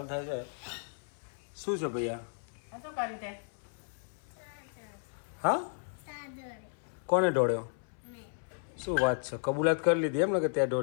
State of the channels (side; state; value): right; silent; 55 dB below the other